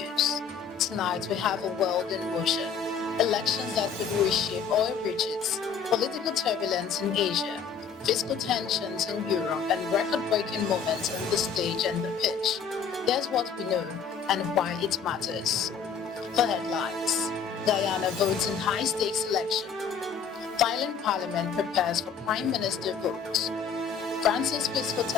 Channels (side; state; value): right; quieter; 6.4 dB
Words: Tonight we have a world in motion. Elections that could reshape oil riches, political turbulence in Asia, fiscal tensions in Europe, and record-breaking moments on the stage and the pitch. Here's what we know and why it matters. For headlines, Guyana votes in high-stakes election. Thailand Parliament prepares for Prime Minister vote. France's fiscal